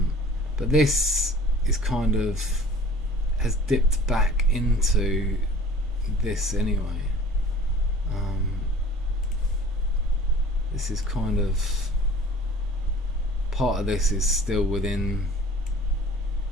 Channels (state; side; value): normal; both; correlation 0.48